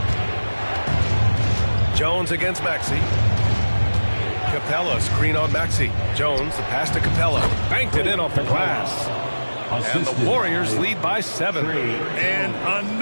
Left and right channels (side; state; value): both; inverted; correlation -1.00